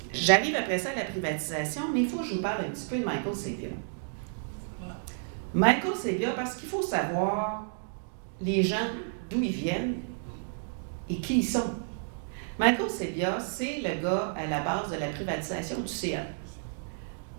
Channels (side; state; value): left; silent; digital silence